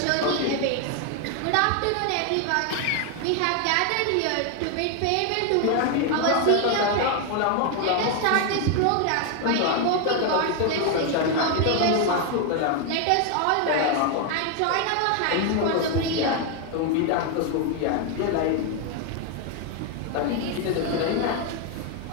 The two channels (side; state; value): both; different; correlation 0.01